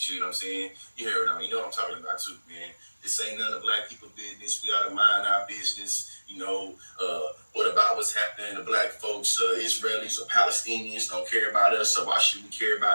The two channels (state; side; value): inverted; both; correlation -1.00